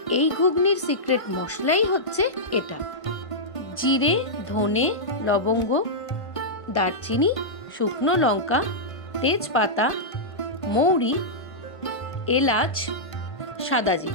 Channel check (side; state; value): right; late; 1.5 ms